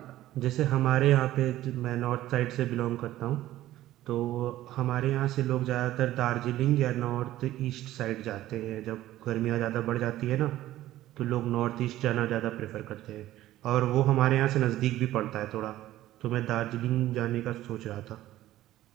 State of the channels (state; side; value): quieter; left; 14.6 dB